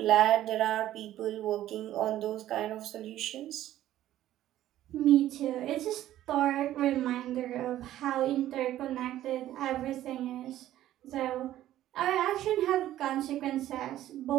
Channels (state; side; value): quieter; left; 13.3 dB